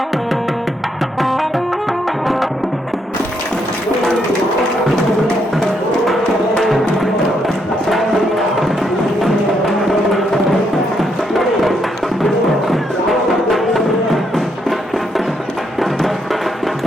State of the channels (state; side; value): normal; both; correlation 0.76